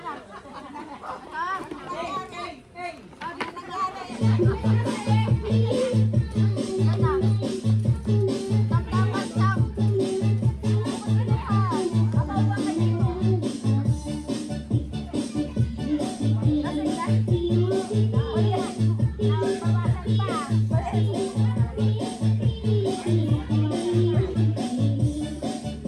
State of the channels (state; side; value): identical; both; correlation 1.00